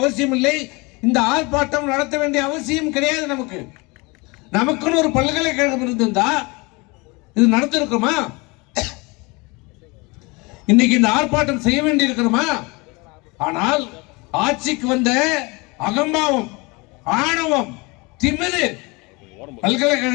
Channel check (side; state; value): right; quieter; 26.5 dB